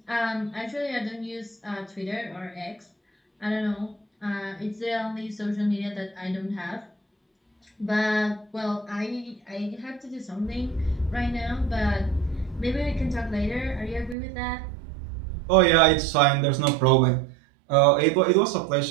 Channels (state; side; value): drops out; left; at 14.2 s